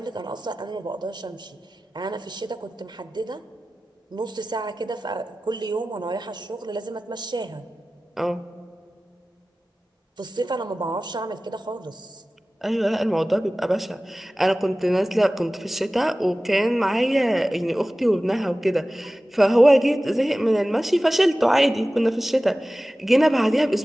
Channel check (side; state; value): both; normal; correlation 0.96